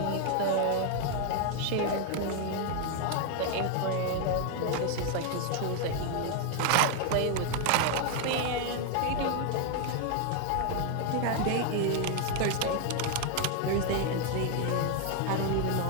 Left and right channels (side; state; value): both; different; correlation 0.01